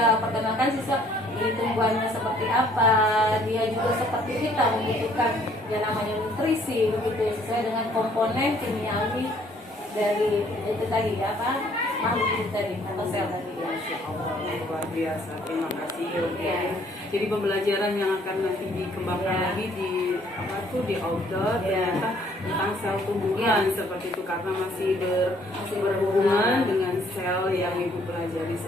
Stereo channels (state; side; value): normal; both; correlation 0.62